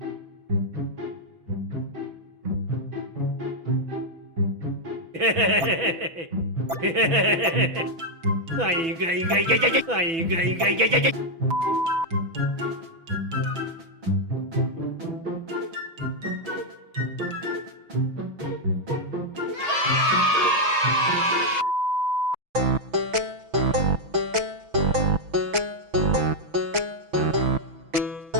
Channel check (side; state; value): left; late; 6.1 ms